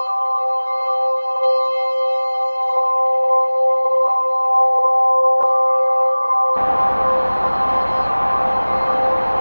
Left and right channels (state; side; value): inverted; both; correlation -1.00